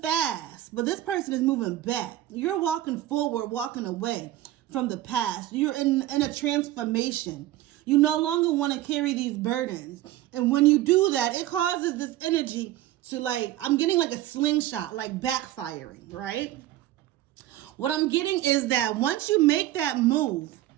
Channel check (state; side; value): quieter; left; 14.5 dB